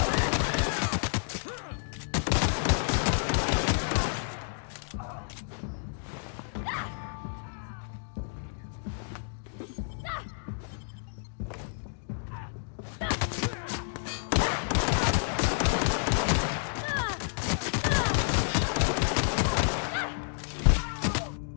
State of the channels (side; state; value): right; silent; digital silence